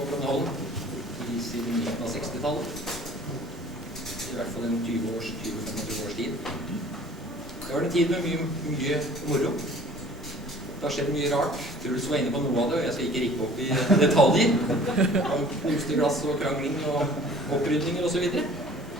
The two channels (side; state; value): both; normal; correlation 0.49